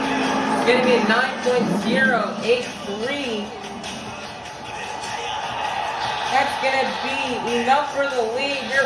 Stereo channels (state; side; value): identical; both; correlation 1.00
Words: It's going to be a 9.083. That's going to be enough for the lead. Your